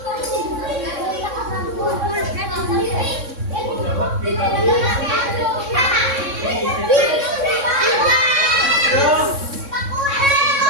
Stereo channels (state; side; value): late; left; 3.6 ms